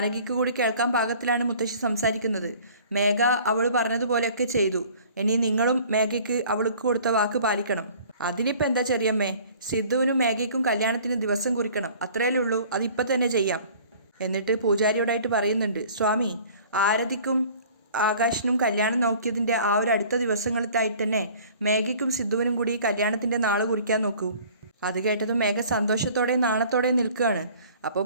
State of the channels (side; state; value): both; inverted; correlation -0.49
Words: കൂടി കേൾക്കാൻ പാകത്തിലാണ് മുത്തശ്ശി സംസാരിക്കുന്നത്. മേഘ അവൾ പറഞ്ഞതുപോലെയൊക്കെ ചെയ്തു, ഇനി നിങ്ങളും മേഘയ്ക്ക് അവൾക്ക് കൊടുത്ത വാക്ക് പാലിക്കണം. അതിനിപ്പോൾ എന്താ ചെറിയമ്മേ, സിദ്ധുവിനും മേഘയ്ക്കും കല്യാണത്തിന് ദിവസം കുറിക്കണം, അത്രയല്ലേ ഉള്ളൂ, അതിപ്പോൾ തന്നെ ചെയ്യാം. എന്നിട്ട് പൂജാരിയോടായിട്ട് പറയുന്നുണ്ട് സ്വാമി ആരതിക്കും ആകാശിനും കല്യാണം നോക്കിയതിൻ്റെ ആ ഒരു അടുത്ത ദിവസങ്ങളിലായിട്ട് തന്നെ മേഘയ്ക്കും സിദ്ധുവിനും കൂടി കല്യാണത്തിൻ്റെ നാൾ കുറിക്കാൻ നോക്കൂ. അത് കേട്ടതും മേഘ സന്തോഷത്തോടെ നാണത്തോടെ നിൽക്കുകയാണ്. അപ്പോൾ